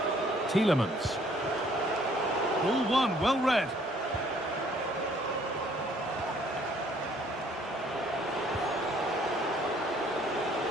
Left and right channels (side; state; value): both; normal; correlation 0.61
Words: Tielemans. Ball one, well read.